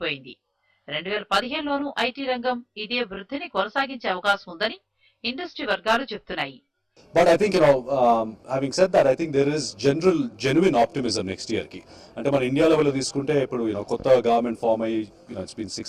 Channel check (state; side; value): identical; both; correlation 1.00